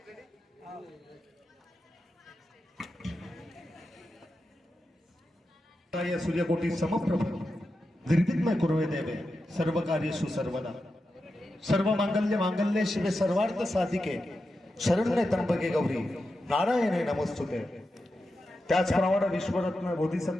या सूर्यकोटी समप्रभ निर्विघ्न कुर्वे देवे सर्व कार्येषु सर्वदा सर्व मांगल्य शिवे सर्वार्थ साधिके शरण्ये त्र्यंबके गौरी नारायणे नमस्तुते। त्याचप्रमाणे विश्वरत्न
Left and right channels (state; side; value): normal; both; correlation 0.90